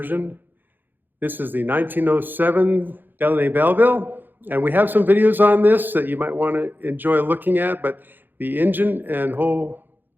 This is the 1907 Delaunay Belleville, and we have some videos on this that you might want to enjoy looking at, but the engine and the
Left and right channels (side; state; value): left; late; 0.091 ms